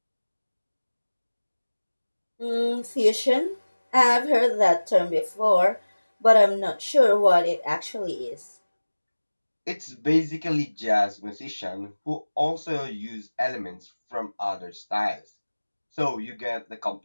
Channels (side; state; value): both; inverted; correlation -1.00